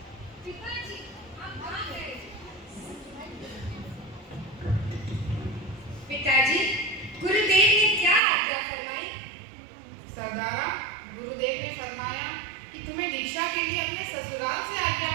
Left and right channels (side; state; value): left; drops out; at 8.2 s